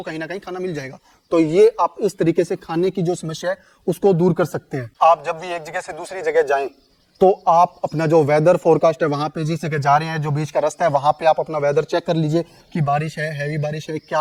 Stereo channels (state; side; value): identical; both; correlation 1.00